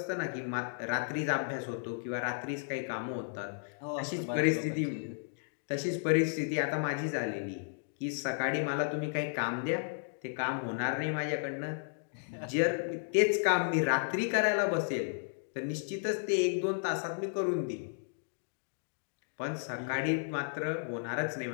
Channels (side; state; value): right; silent; digital silence